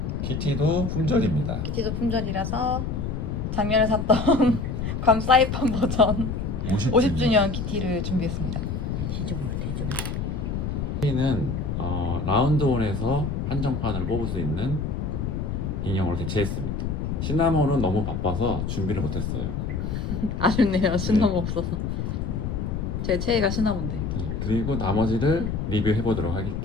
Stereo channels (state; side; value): noise; left; rumble, 3 dB below the sound